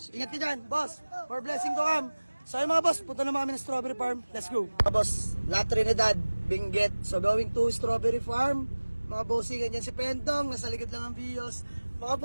Ingat ka dyan, boss. For blessing to come. So yung mga boss, punta naman kami ng Strawberry Farm. Let's go. Mga boss, La Trinidad, Benguet. So going to Strawberry Farm. Mga bossing, ganyan si Pentong. Nasa likod lang ang bios. Mga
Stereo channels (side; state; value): both; inverted; correlation -1.00